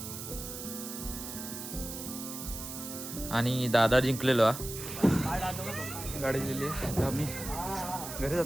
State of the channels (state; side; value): noise; right; hiss, 8 dB below the sound